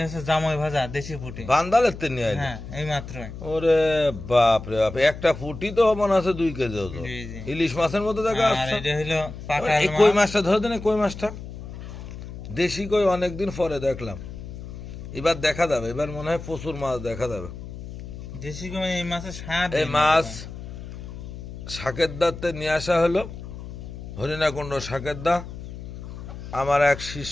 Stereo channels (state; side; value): noise; left; hum, 11 dB below the sound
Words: হচ্ছে জামাই ভাজা দেশি পুঁটি। বান্দালের তে নিয়ে আইলো। হ্যাঁ এই মাত্রই। ওরে বাপ রে বাপ, একটা ফুটি তো মনে আছে 2 কেজি ওজন। জি, জি। ইলিশ মাছের মতো দেখা আর যাচ্ছে। এটা হলো পাকা এই কই মাছ। মাছটা ধরে দেন, কই মাছটা দেশি কই, অনেকদিন পরে দেখলাম। এবার দেখা যাবে, এবার মনে হয় প্রচুর মাছ দেখা যাবে। দেশি কই এই মাছের স্বাদ। এই মাছ শাকের দাতে নিয়ে আসা হলো, হরিণাকুণ্ড শাকের দা। আমার এক